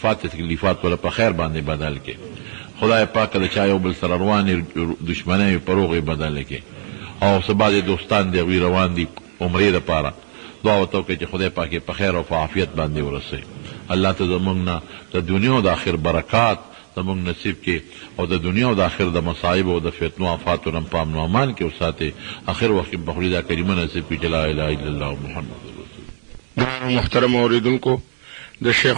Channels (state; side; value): silent; left; 66 dB below the other